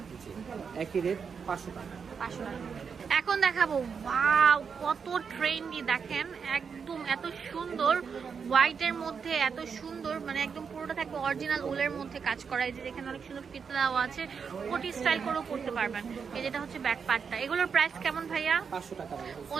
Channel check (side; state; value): left; quieter; 6.1 dB